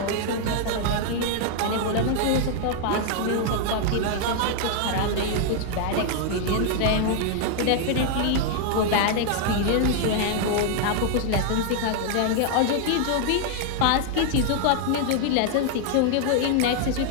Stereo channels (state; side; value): different; both; correlation 0.00